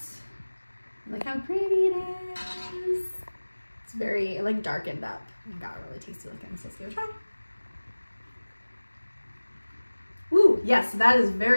Look how pretty it is. It's very like darkened up and got really tasty looking, so let's give it a try. Ooh, yes, that is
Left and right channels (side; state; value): both; inverted; correlation -1.00